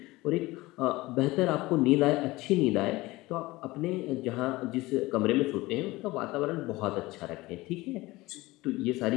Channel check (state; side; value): quieter; right; 20.1 dB